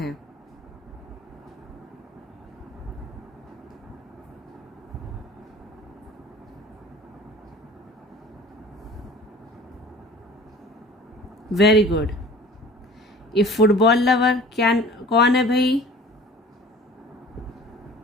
Very good. ये फुटबॉल लवर क्या, कौन है भाई?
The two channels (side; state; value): both; normal; correlation 0.45